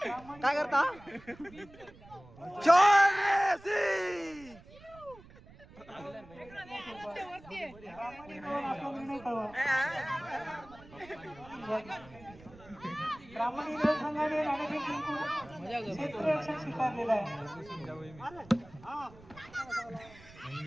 काय करता शॉट रे सी ब्राह्मण इलेव्हन आपला निर्णय कळवा. ब्राह्मण इलेव्हन संघाने नाणेफेक जिंकून क्षेत्ररक्षण स्वीकारलेलं आहे.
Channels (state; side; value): noise; right; rumble, 21 dB below the sound